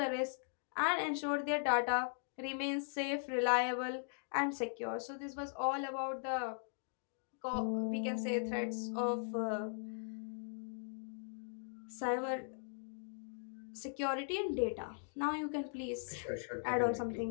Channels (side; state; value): right; silent; digital silence